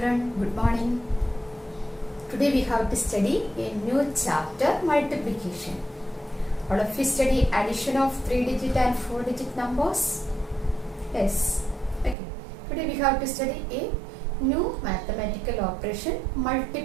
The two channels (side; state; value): left; drops out; at 12.2 s